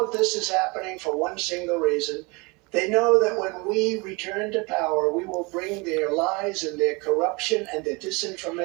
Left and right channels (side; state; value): left; quieter; 27.3 dB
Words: this is happening for one single reason. They know that when we return to power, we will bring their lies and their corruption and their